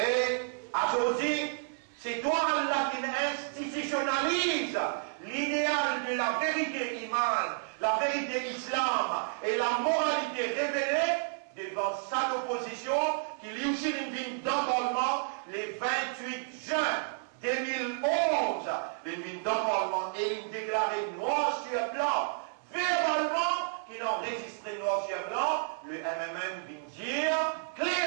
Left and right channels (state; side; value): silent; left; 57 dB below the other